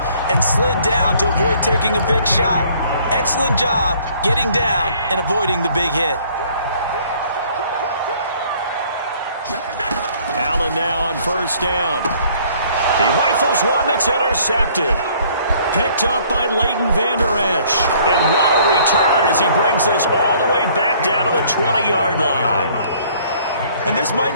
and slid down to avoid taking a big shot. Excellent job getting down and avoiding the big hit. Allen now on 1st down. He rifles one that's intercepted. Picked up by Leighton Vander Esch. And what a return as he brings this all the way back down to the 20-yard line. And this might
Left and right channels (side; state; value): both; inverted; correlation -0.59